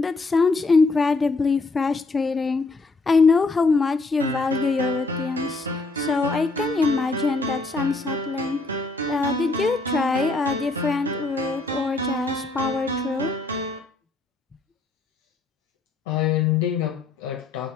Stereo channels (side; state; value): right; quieter; 3.5 dB